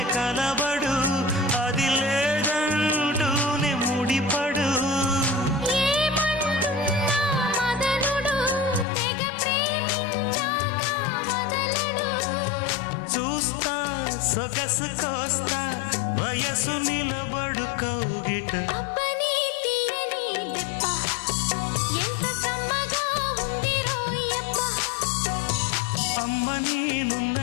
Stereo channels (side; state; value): right; drops out; at 8.8 s